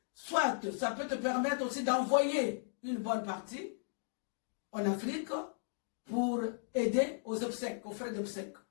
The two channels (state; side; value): silent; right; digital silence